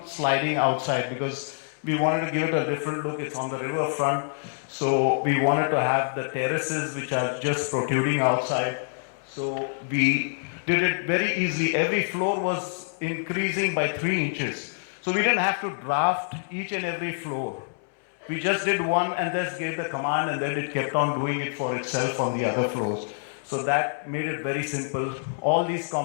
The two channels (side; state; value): right; silent; 61 dB below the other